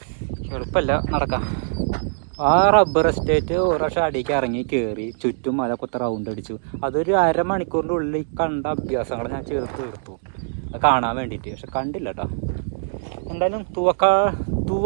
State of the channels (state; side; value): silent; left; digital silence